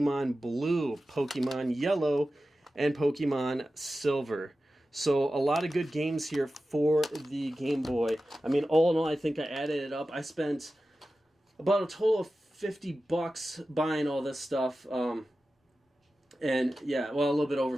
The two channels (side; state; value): both; normal; correlation 0.94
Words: Blue, Pokemon Yellow, and Pokemon Silver. So a lot of good games here for the Game Boy. I mean, all in all, I think I added it up. I spent about a total of $50 buying all this stuff. And yeah, well, a little bit over